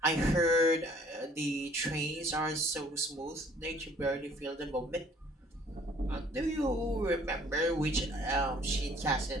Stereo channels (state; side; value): normal; both; correlation 0.57